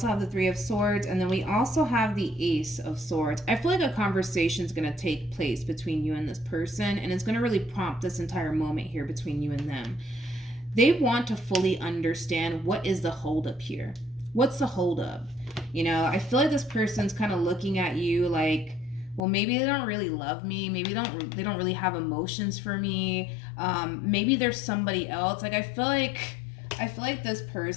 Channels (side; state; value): right; drops out; at 19.2 s